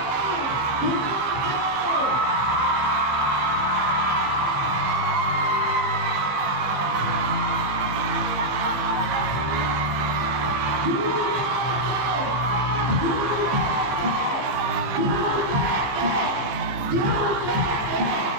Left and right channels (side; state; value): left; late; 15 ms